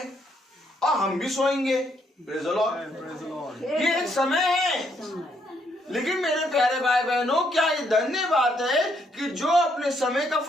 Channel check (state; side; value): normal; both; correlation 0.73